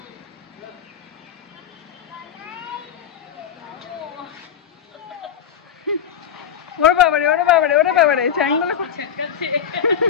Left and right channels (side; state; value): right; quieter; 8.4 dB